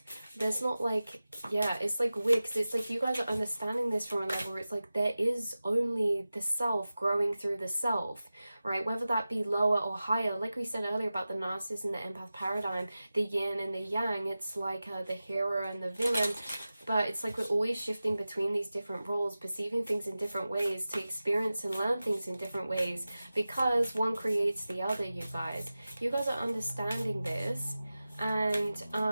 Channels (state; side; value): inverted; both; correlation -0.95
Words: There's not like, yeah, it's like weird, because it's like you guys are understanding this from a level where it's like there is only the self growing through the self, right? Whether that be lower or higher, like we said earlier about the narcissist and the empath paradigm, the yin and the yang, it's like the hero and the villain. But it's like we're always shifting between these different roles, perceiving things in different ways, to experience and learn things in different ways, because one creates the other, you guys. You guys are understanding this. And